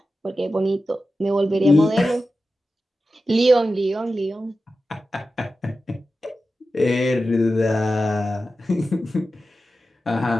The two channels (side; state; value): both; normal; correlation 0.93